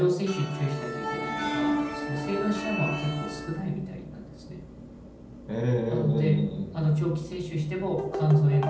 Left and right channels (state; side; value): identical; both; correlation 1.00